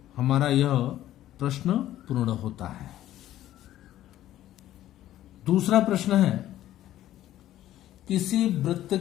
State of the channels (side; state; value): right; quieter; 13.3 dB